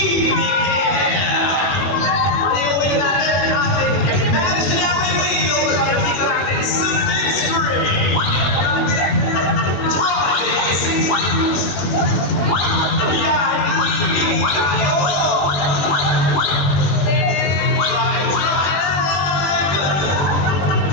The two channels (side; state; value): right; late; 21 ms